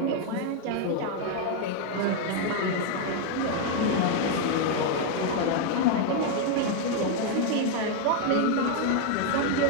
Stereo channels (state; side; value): different; both; correlation 0.01